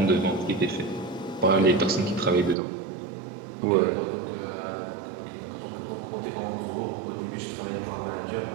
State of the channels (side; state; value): left; drops out; at 2.6 s